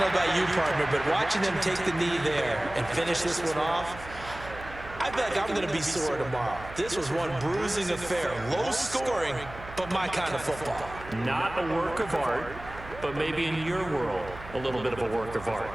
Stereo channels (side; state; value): right; noise; hum, 15 dB below the sound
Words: know about you, partner, but watching them take the knee there and finish this one off, I feel like I'm going to be sore tomorrow. This was one bruising affair. Low scoring, but my kind of football. Not a work of art, but maybe in your world, a little bit of a work of art.